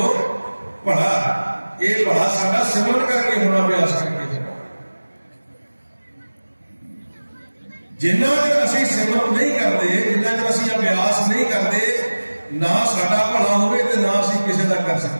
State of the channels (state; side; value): inverted; both; correlation -1.00